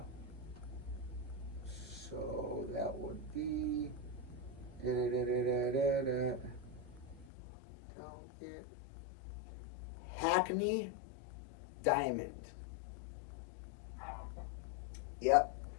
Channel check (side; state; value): right; drops out; at 7.2 s